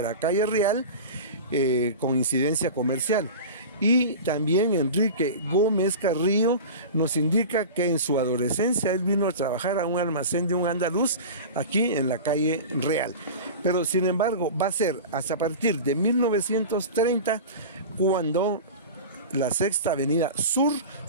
calle Real con incidencia comercial. Y también Enrique Gómez Carrillo nos indica que en su adolescencia él vino a trabajar a un almacén de un andaluz aquí en la calle Real. Pero sin embargo va a ser hasta a partir de 1930 cuando la Sexta Avenida Sur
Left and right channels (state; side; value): inverted; both; correlation -0.31